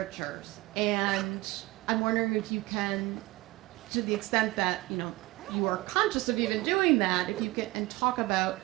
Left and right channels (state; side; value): quieter; left; 20.2 dB